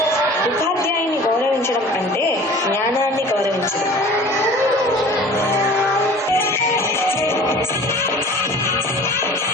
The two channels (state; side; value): normal; both; correlation 0.44